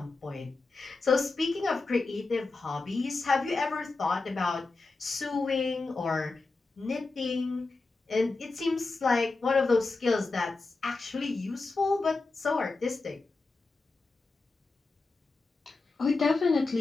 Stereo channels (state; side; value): quieter; right; 3.7 dB